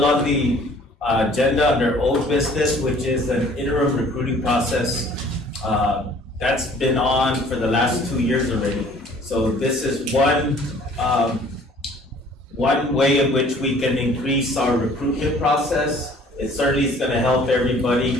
on the agenda under old business, which is an interim recruiting process. That's been on for the last 2 years already. So this is one way in which we can increase our recruitment process. It certainly is going to help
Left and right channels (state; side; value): normal; both; correlation 0.54